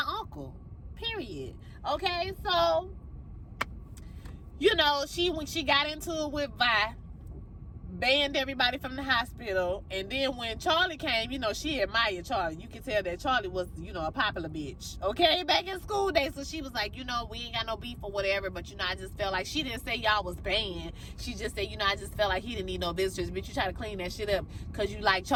uncle, period. Okay, so, you know, when she got into it with Vi, banned everybody from the hospital, and then when Charlie came, you know, she admired Charlie. You can tell that Charlie was, you know, a popular bitch, okay, back in school days. So she was like, you know, we ain't got no beef or whatever, but, you know, I just felt like, she didn't say y'all was banned. She just said, you know, I just felt like he didn't need no visitors, but you try to clean that shit up because you like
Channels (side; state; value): both; identical; correlation 1.00